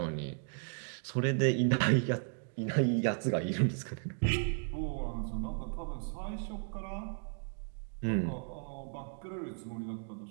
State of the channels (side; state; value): left; silent; 54 dB below the other